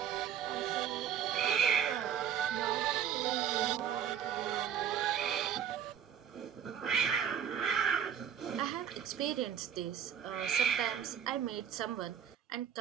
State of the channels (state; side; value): quieter; left; 8.9 dB